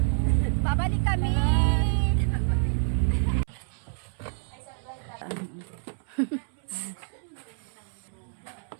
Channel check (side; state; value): left; silent; 59 dB below the other